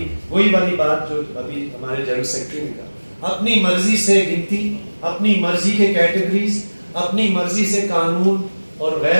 وہی والی بات جو ابھی ہمارے جنرل سیکرٹری نے کہا, اپنی مرضی سے گنتی, اپنی مرضی کے کیٹیگریز, اپنی مرضی سے قانون اور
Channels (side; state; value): both; inverted; correlation -1.00